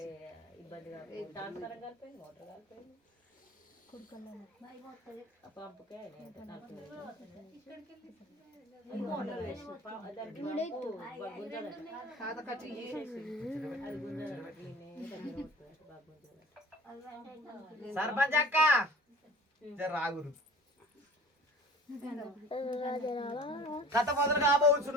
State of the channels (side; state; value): both; normal; correlation 0.44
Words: సర్పంచ్ అక్క రాగురు కథ మొదలు